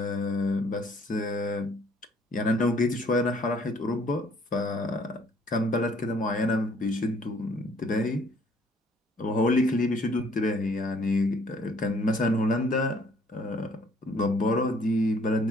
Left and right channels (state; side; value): normal; both; correlation 0.61